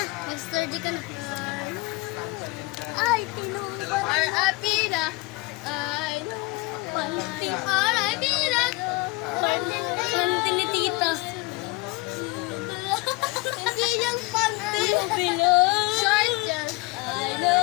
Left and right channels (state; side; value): quieter; right; 23.6 dB